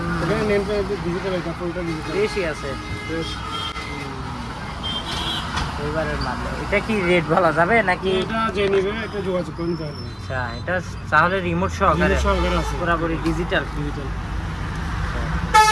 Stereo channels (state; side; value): identical; both; correlation 1.00